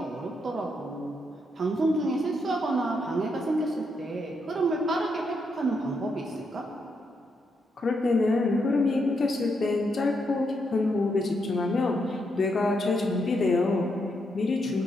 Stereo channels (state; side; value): normal; both; correlation 0.80